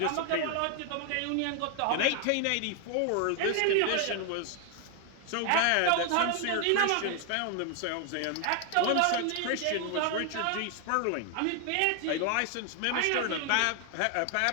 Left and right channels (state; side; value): different; both; correlation 0.00